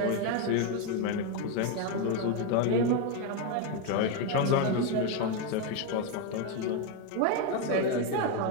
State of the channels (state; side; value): different; both; correlation 0.02